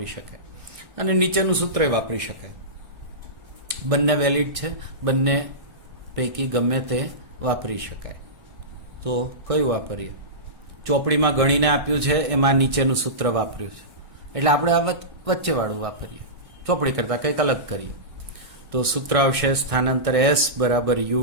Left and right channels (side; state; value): left; late; 1.6 ms